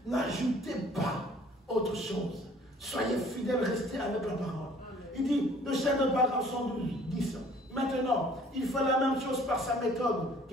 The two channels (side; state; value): both; normal; correlation 0.54